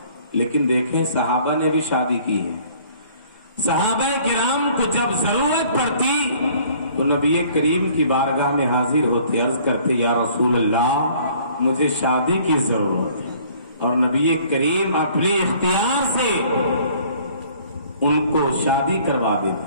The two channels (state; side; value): inverted; both; correlation -0.56